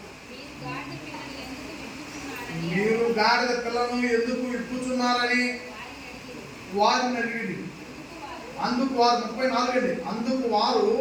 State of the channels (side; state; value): both; identical; correlation 1.00